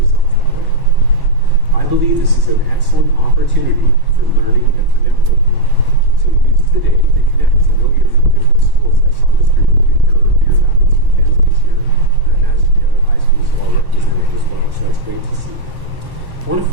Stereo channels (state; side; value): late; left; 1.1 ms